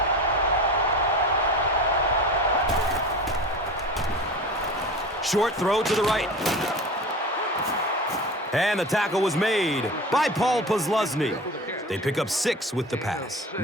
Short throw to the right. And the tackle was made by Paul Posluszny. They pick up 6 with the pass.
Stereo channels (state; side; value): normal; both; correlation 0.33